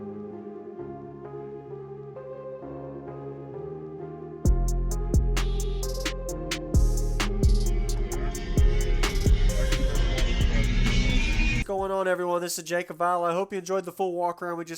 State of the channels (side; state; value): both; identical; correlation 1.00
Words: What's going on, everyone? This is Jacob Vile. I hope you enjoyed the full walk around. We